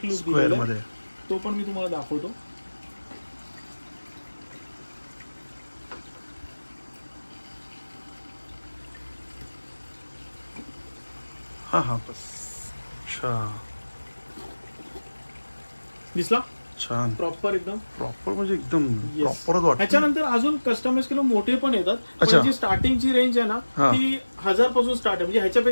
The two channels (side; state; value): both; inverted; correlation -1.00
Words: लुक दिलेला आहे, तो पण मी तुम्हाला दाखवतो. हा बस. अच्छा, दिसला? छान, प्रॉपर एकदम प्रॉपर, म्हणजे एकदम प्रॉपरच वाटतं. त्याच्यानंतर अजून कस्टमाइज केलं मोठे पण येतात, पण जी स्टार्टिंगची रेंज आहे ना ती 1000 पासून स्टार्ट आहे. म्हणजे